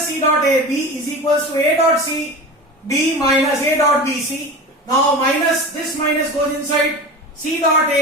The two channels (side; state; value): both; normal; correlation 0.31